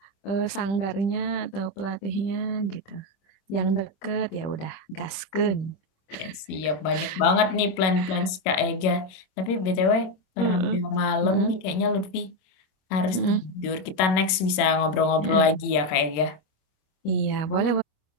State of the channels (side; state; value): right; late; 27 ms